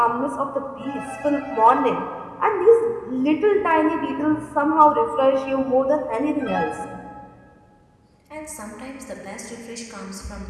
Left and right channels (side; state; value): both; identical; correlation 1.00